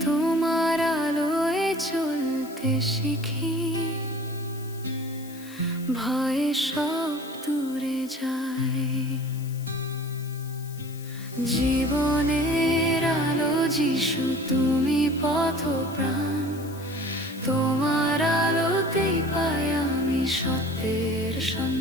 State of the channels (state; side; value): noise; left; hiss, 19 dB below the sound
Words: তোমার আলোয় চলতে শিখি, ভয়ে সব দূরে যায়। জীবনের আলো যিশু, তুমি পথ প্রাণ, তোমার আলোতেই পাই আমি সত্যের